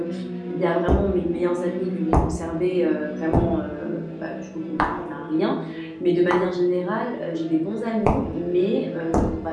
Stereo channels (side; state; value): both; identical; correlation 1.00